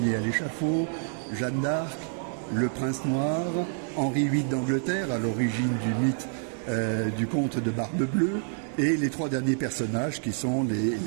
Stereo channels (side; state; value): left; silent; 60 dB below the other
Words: Ier à l'échafaud, Jeanne d'Arc, le prince noir, Henri VIII d'Angleterre, à l'origine du mythe du comte de Barbe Bleue, et les 3 derniers personnages qui sont les